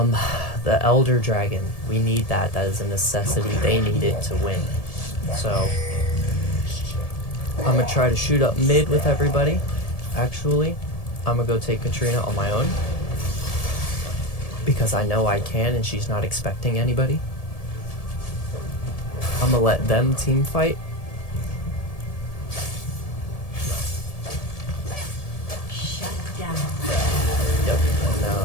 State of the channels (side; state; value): right; late; 1.7 ms